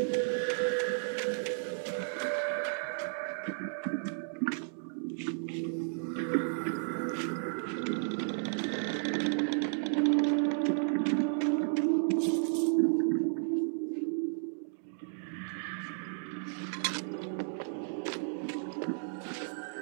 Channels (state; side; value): silent; left; digital silence